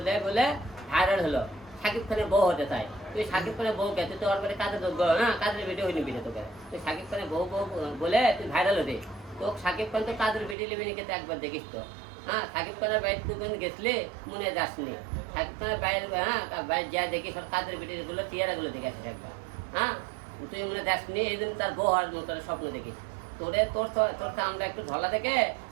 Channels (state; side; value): drops out; left; at 10.6 s